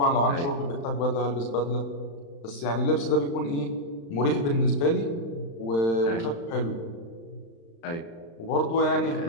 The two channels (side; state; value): right; late; 35 ms